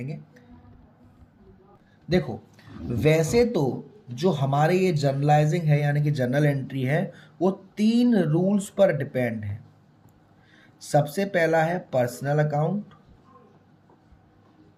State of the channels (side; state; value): both; identical; correlation 1.00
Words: देखो, वैसे तो जो हमारे ये जर्नलाइजिंग है, यानी कि जर्नल एंट्री है, वो 3 रूल्स पर डिपेंड है। सबसे पहला है पर्सनल अकाउंट।